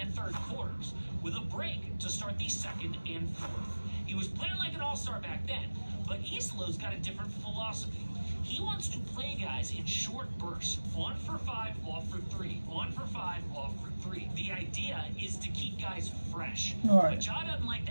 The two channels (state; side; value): inverted; both; correlation -1.00